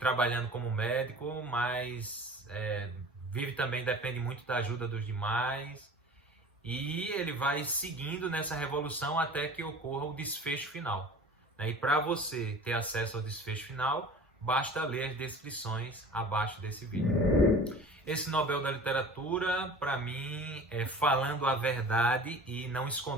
como médico, mas vive também, depende muito da ajuda dos demais, e ele vai seguindo nessa revolução até que ocorra o desfecho final, né? E para você ter acesso ao desfecho final, basta ler as descrições abaixo desse vídeo. Esse Nobel da Literatura, para mim, falando a verdade e não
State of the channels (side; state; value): both; normal; correlation 0.42